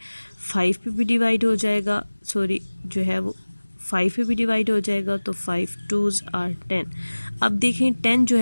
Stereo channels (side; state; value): both; inverted; correlation -1.00